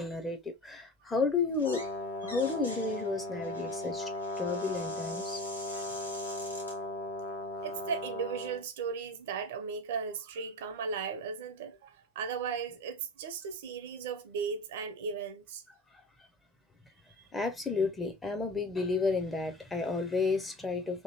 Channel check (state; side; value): normal; both; correlation 0.31